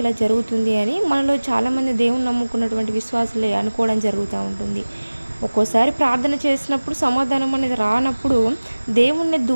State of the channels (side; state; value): both; inverted; correlation -1.00